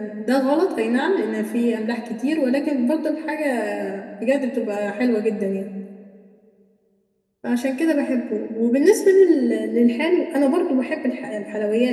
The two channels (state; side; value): identical; both; correlation 1.00